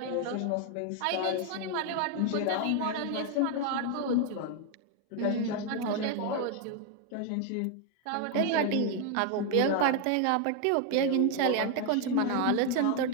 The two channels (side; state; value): both; different; correlation 0.01